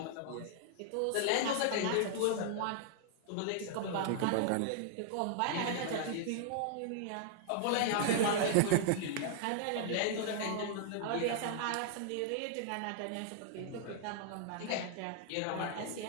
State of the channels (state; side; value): different; both; correlation -0.01